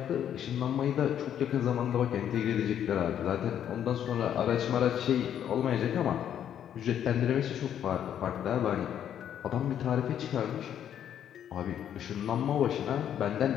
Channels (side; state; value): right; quieter; 9.8 dB